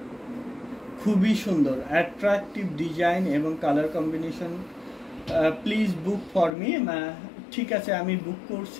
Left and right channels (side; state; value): right; drops out; at 6.6 s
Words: খুবই সুন্দর অ্যাট্রাকটিভ ডিজাইন এবং colour combination. Please book for me. ঠিক আছে, আমি বুক